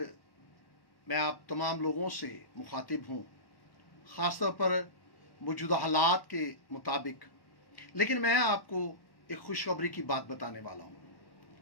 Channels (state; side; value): late; right; 1.1 ms